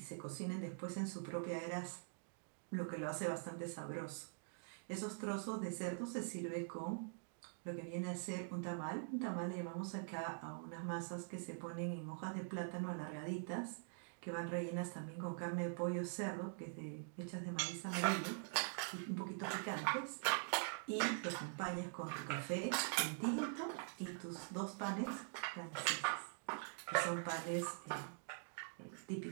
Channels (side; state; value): left; silent; digital silence